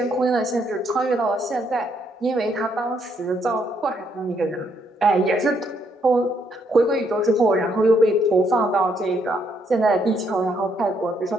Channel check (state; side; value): normal; both; correlation 0.73